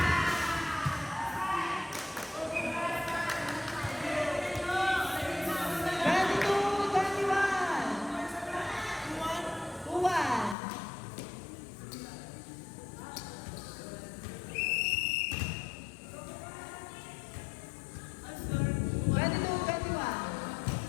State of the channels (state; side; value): drops out; right; at 10.6 s